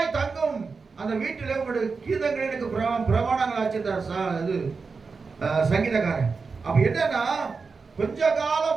தங்கும் அந்த வீட்டில் உங்களுடைய கீதங்கள் எனக்கு பிரமாணங்கள் ஆச்சிருந்தார் இது சங்கீதக்காரன். அப்ப என்னன்னா கொஞ்ச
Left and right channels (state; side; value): quieter; left; 4.7 dB